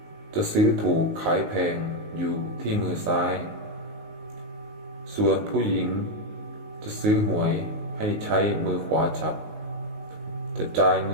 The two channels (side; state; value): left; late; 19 ms